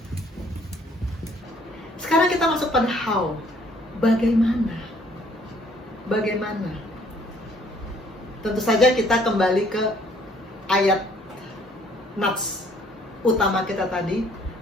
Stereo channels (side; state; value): both; normal; correlation 0.61